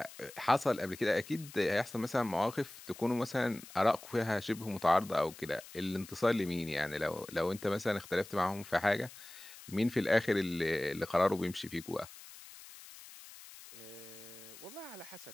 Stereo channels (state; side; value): noise; left; hiss, 17 dB below the sound